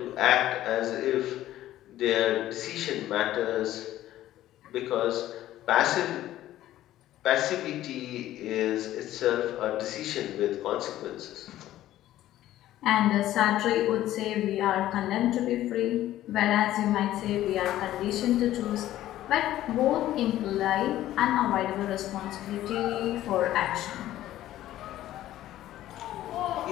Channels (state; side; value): quieter; right; 13.8 dB